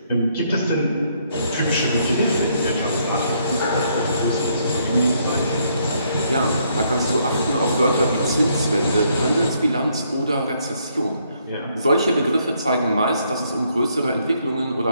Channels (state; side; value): inverted; both; correlation -0.71